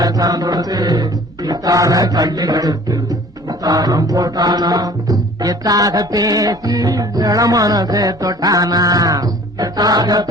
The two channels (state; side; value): normal; both; correlation 0.49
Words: சரந்தொடுத்து வித்தார கள்ளி கழுத்து முத்தாரம் போட்டானா. எத்தாக பேசி இளமனசே தொட்டானா. எத்தாக